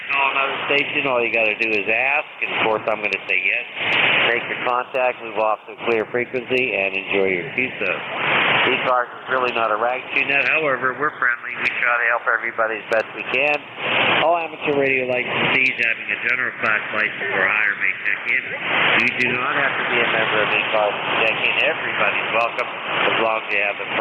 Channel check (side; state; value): both; identical; correlation 1.00